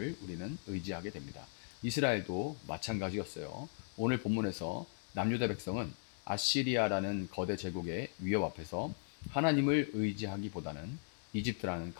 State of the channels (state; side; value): silent; right; digital silence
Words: 우리는 의지하게 됩니다. 이스라엘도 마찬가지였어요. 오늘 본문에서 남유다 백성은 아시리아라는 거대 제국의 위협 앞에서 하나님을 의지하기보다는 이집트라는